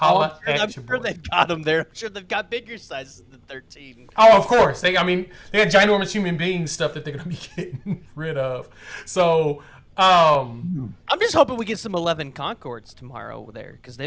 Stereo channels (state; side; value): identical; both; correlation 1.00